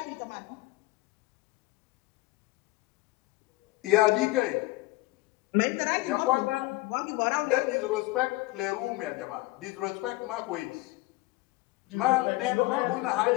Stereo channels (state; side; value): quieter; right; 20.5 dB